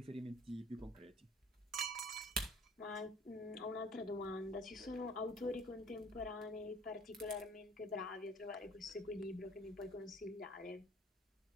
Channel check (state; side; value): normal; both; correlation 0.51